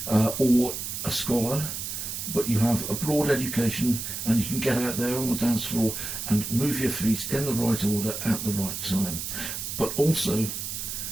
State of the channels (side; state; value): right; noise; hiss, 5 dB below the sound